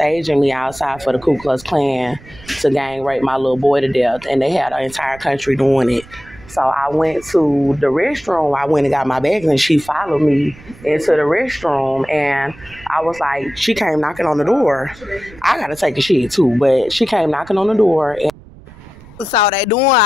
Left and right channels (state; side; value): noise; right; rumble, 21 dB below the sound